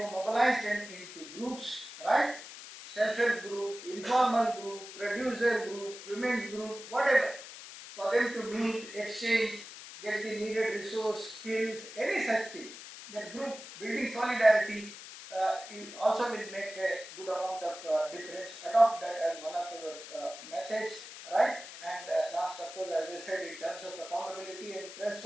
mobilize them into groups, right? Self-help group, informal group, producer group, women's group, whatever, for them to meet, exchange, get the needed resource, skills, any such thing. That group building solidarity also will make a good amount of difference. Adopt that as one of your methods, right? And last, of course, as I said, in terms of accountability and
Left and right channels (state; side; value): noise; left; hiss, 13 dB below the sound